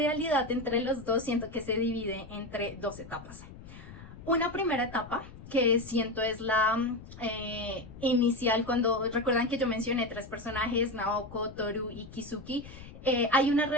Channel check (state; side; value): noise; left; rumble, 16 dB below the sound